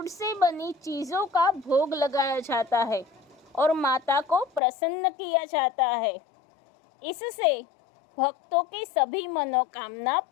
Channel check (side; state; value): right; drops out; at 4.6 s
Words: से बनी चीज़ों का भोग लगाया जाता है और माता को प्रसन्न किया जाता है। इससे भक्तों की सभी मनोकामना